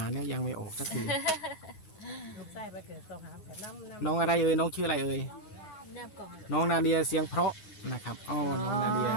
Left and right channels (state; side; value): late; right; 9.4 ms